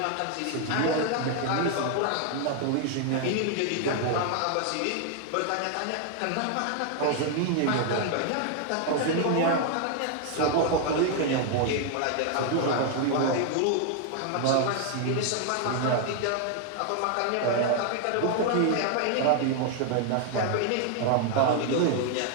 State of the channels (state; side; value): different; both; correlation 0.00